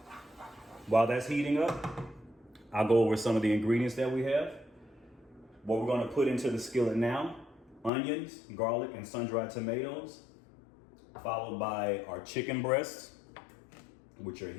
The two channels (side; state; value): right; drops out; at 7.9 s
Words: While that's heating up, I'll go over some of the ingredients that we have. What we're going to put into the skillet now: onions, garlic, and sun-dried tomatoes, followed by our chicken breasts, which are